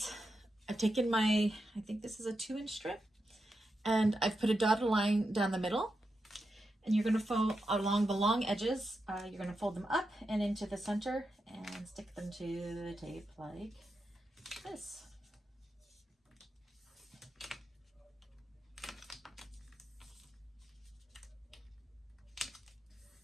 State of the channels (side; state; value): both; normal; correlation 0.87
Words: I've taken my, I think this is a 2-inch strip, and I've put a dotted line down the middle. And you're going to fold along the long edges. You're going to fold them up and into the center and stick them to the tape like this.